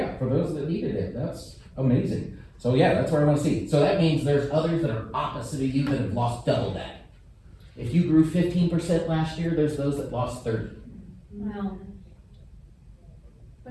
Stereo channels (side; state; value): both; identical; correlation 1.00